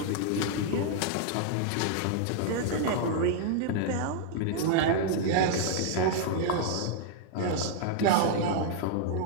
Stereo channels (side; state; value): both; different; correlation -0.01